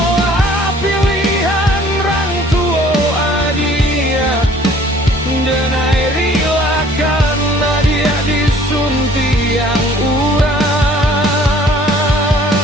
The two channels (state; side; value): normal; both; correlation 0.54